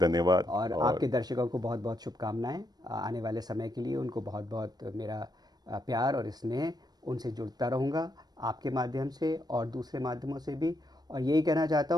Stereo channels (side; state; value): left; late; 0.19 ms